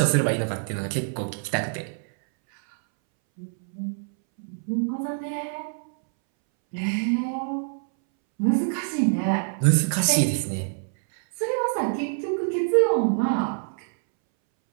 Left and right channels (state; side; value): silent; left; 61 dB below the other